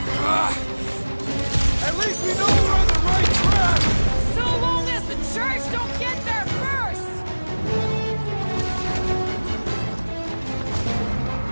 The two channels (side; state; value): both; inverted; correlation -1.00